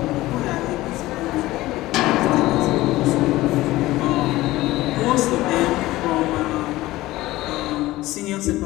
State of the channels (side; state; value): right; quieter; 17.6 dB